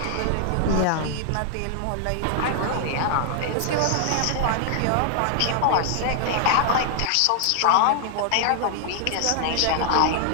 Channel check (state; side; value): different; both; correlation 0.00